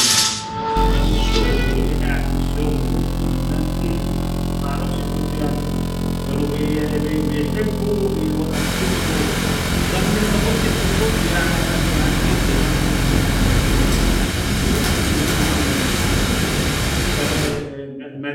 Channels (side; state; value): both; identical; correlation 1.00